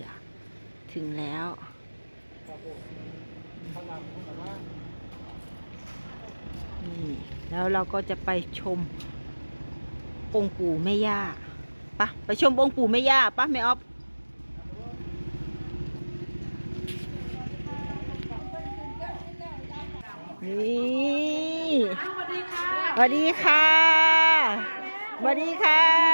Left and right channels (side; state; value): both; inverted; correlation -1.00